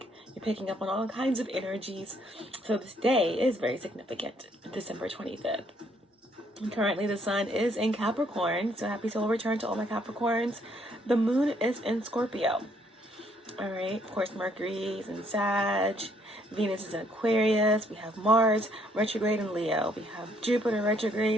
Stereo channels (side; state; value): both; normal; correlation 0.68